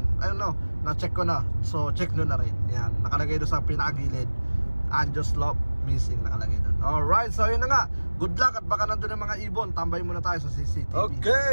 ayun no, na-check ko na. So check nyo na rin, yan, nakalagay doon sa pinakagilid, Angel's Love missing, nakalagay doon. Alright, so yun na nga, good luck at baka nandun yung mga ibon. Tambay muna tayo sa CCTV.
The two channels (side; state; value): both; inverted; correlation -1.00